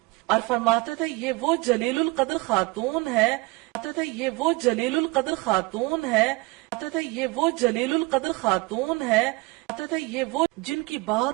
اور فرماتے تھے یہ وہ جلیل القدر خاتون ہے، یہ وہ جلیل القدر خاتون ہے، یہ وہ جلیل القدر خاتون ہے، یہ وہ جن کی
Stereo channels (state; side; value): quieter; left; 23.8 dB